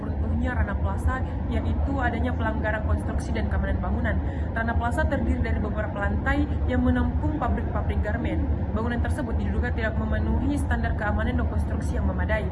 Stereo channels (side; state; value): both; identical; correlation 1.00